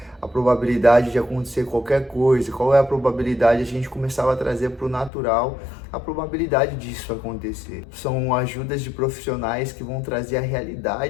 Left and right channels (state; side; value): drops out; right; at 5.1 s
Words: a probabilidade de acontecer qualquer coisa? Qual é a probabilidade? A gente começava a trazer para o natural a probabilidade disso acontecer. São ajudas de profissionais que vão trazer a